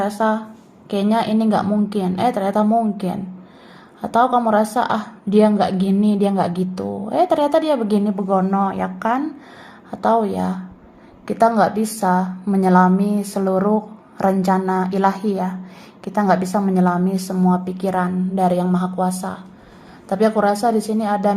kayaknya ini nggak mungkin, ternyata mungkin. Atau kamu rasa dia nggak gini, dia nggak gitu, ternyata dia begini begono ya kan? Atau ya kita nggak bisa menyelami seluruh rencana ilahi ya. Kita nggak bisa menyelami semua pikiran dari Yang Maha Kuasa. Tapi aku rasa di sini ada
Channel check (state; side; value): identical; both; correlation 1.00